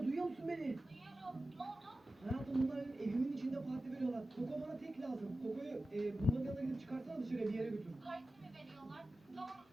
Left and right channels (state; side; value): normal; both; correlation 0.94